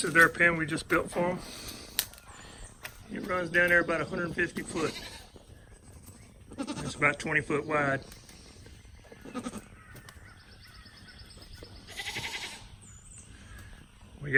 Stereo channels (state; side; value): identical; both; correlation 1.00